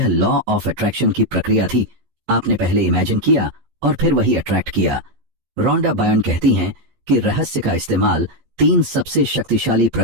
लॉ ऑफ अट्रैक्शन की प्रक्रिया थी। आपने पहले इमेजिन किया और फिर वही अट्रैक्ट किया। रोंडा बर्न कहती हैं कि रहस्य का इस्तेमाल 3 सबसे शक्तिशाली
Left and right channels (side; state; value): left; late; 14 ms